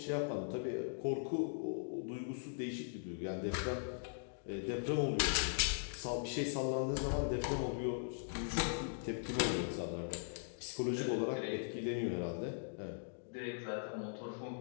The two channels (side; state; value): right; silent; digital silence